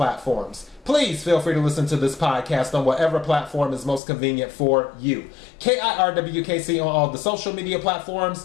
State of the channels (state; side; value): drops out; right; at 4.0 s